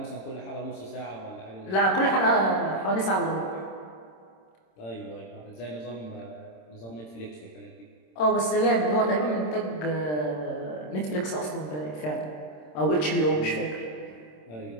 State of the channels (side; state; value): right; late; 26 ms